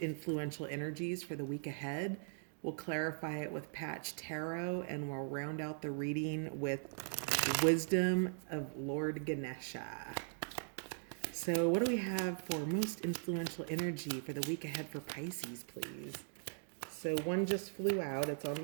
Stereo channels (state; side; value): silent; left; digital silence